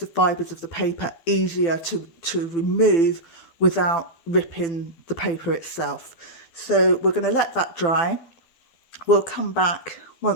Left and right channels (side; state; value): right; late; 12 ms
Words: fibres of the paper easier to remove without ripping the paper itself. So we're going to let that dry. We'll come back